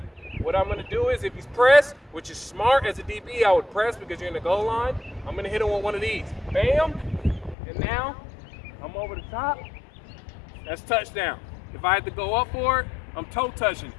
What I'm going to do is, if he's pressed, which is smart as a DB, I would press because you're in the goal line. I'm going to hit him with one of these. Bam. And now I'm over the top. That's touchdown. If I had to go up for it, I'm toe touching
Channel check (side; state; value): right; drops out; at 7.6 s